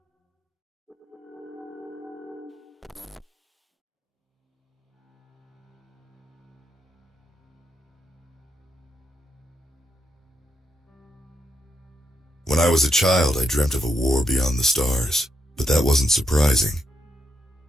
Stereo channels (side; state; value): both; normal; correlation 0.81